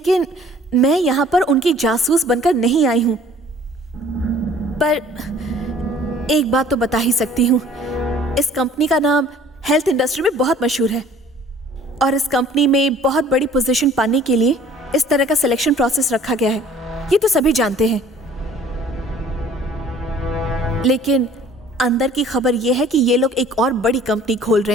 मैं यहां पर उनकी जासूस बनकर नहीं आई हूं। पर एक बात तो बता ही सकती हूं, इस कंपनी का नाम हेल्थ इंडस्ट्री में बहुत मशहूर है और इस कंपनी में बहुत बड़ी पोजीशन पाने के लिए इस तरह का सिलेक्शन प्रोसेस रखा गया है। ये तो सभी जानते हैं। लेकिन अंदर की खबर यह है कि ये लोग एक और बड़ी कंपनी खोल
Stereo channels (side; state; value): both; normal; correlation 0.52